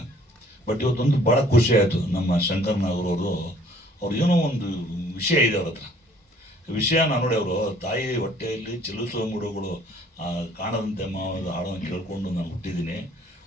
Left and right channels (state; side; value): normal; both; correlation 0.58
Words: ಬಟ್ ಇವತ್ತೊಂದು ಭಾಳ ಖುಷಿ ಆಯಿತು. ನಮ್ಮ ಶಂಕರ್ ನಾಗರವರು ಅವ್ರು ಏನೋ ಒಂದು ವಿಷಯ ಇದೆ ಅವ್ರ ಹತ್ರ. ವಿಷಯನ ನೋಡಿ, ಅವರು ತಾಯಿ ಹೊಟ್ಟೆಯಲ್ಲಿ ಚಲಿಸುವ ಮೂಡುಗಳು ಕಾಣದಂತೆ ಮಾವದ ಹಾಡನ್ನು ಕೇಳ್ಕೊಂಡು ನಾನು ಹುಟ್ಟಿದ್ದೀನಿ.